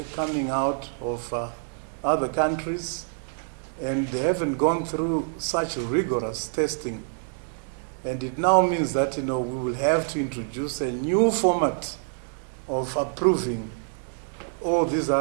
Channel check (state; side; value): silent; left; digital silence